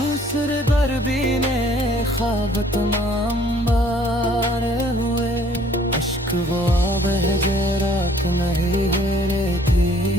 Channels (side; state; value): both; normal; correlation 0.59